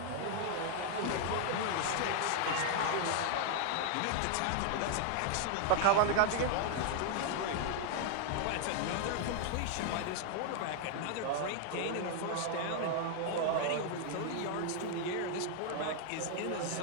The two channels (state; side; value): different; both; correlation 0.00